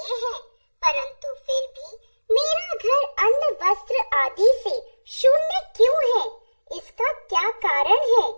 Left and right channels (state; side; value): inverted; both; correlation -1.00